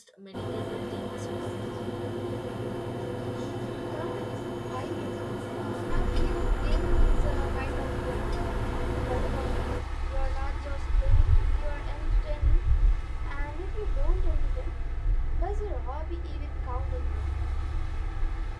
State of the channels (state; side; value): identical; both; correlation 1.00